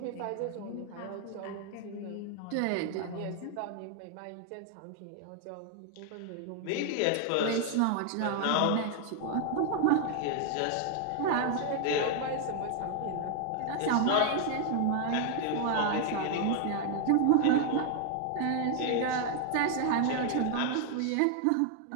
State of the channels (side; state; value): both; different; correlation 0.00